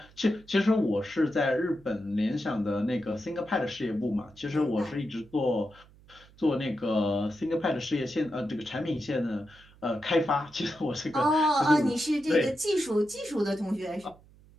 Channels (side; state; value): right; noise; hum, 26 dB below the sound